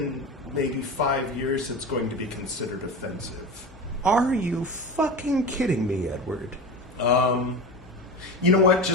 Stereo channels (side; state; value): both; normal; correlation 0.27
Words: maybe 5 years it's going to be considered offensive. Are you fucking kidding me, Edward? You know what?